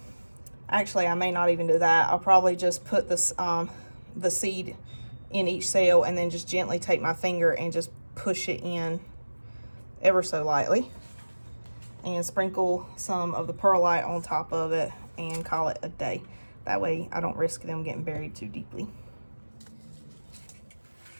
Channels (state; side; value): inverted; both; correlation -1.00